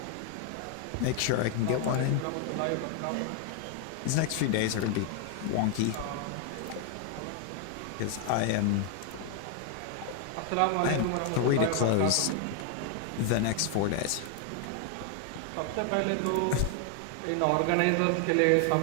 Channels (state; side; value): different; both; correlation 0.00